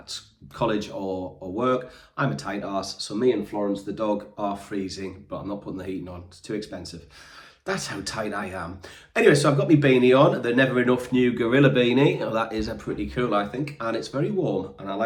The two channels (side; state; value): both; identical; correlation 1.00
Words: college or work. I'm a tight arse, so me and Florence the dog are freezing, but I'm not putting the heating on, it's too expensive. That's how tight I am. Anyway, so I've got my beanie on, the Never Enough new Gorilla beanie. Oh, that is pretty cool, I think, and it's very warm, and I